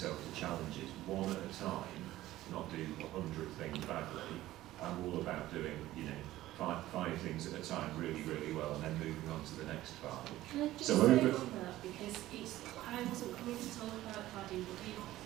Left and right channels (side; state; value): left; quieter; 15.4 dB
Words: to challenges one at a time, not do 100 things badly. I'm all about doing, five things at a time really, really well and then moving on to the next five. Can I just say on that, because I wasn't coming to talk about cladding,